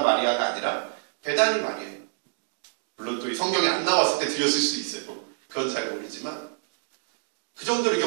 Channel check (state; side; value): silent; left; 60 dB below the other